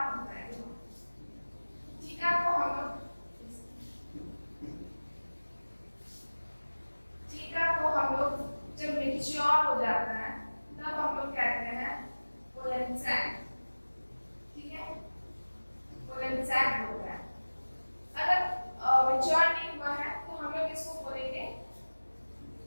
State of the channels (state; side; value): inverted; both; correlation -1.00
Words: होता है, थीका को हम लोग, थीका को हम लोग जब मैच्योर हो जाता है तब हम लोग कहते हैं पोलन सैक, ठीक है, पोलन सैक होता है। अगर मैच्योर नहीं हुआ है तो हम लोग इसको बोलेंगे